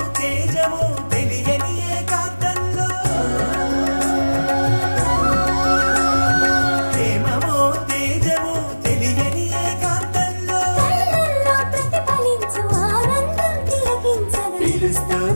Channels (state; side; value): inverted; both; correlation -1.00